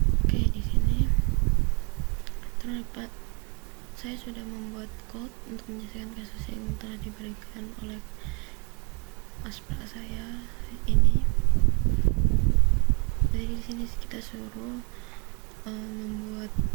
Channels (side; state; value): left; quieter; 33.0 dB